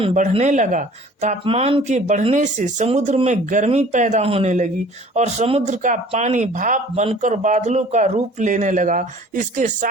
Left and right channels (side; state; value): both; normal; correlation 0.50